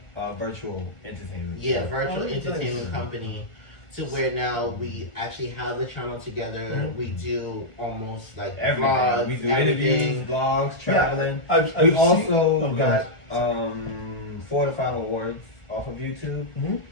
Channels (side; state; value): right; late; 1.4 ms